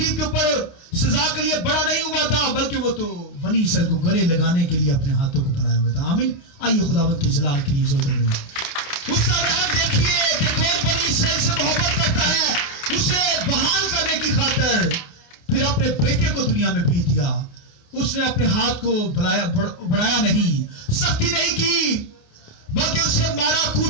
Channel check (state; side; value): late; right; 28 ms